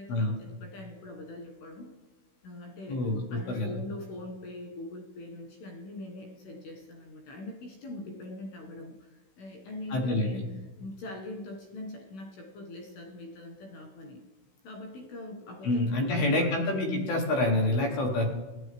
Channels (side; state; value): right; late; 16 ms